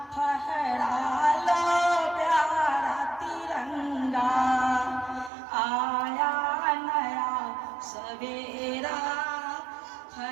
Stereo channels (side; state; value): left; drops out; at 5.3 s